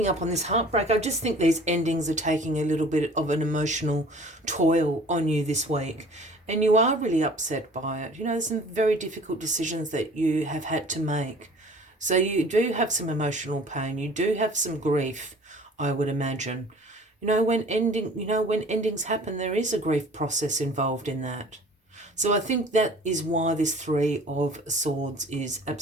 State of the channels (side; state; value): both; normal; correlation 0.48